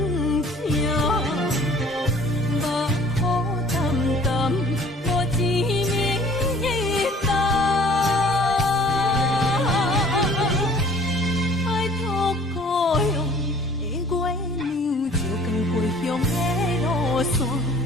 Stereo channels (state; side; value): normal; both; correlation 0.52